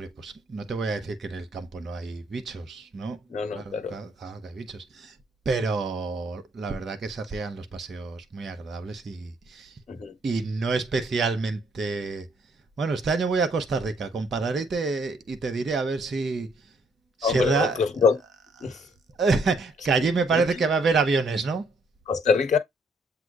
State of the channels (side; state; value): both; normal; correlation 0.67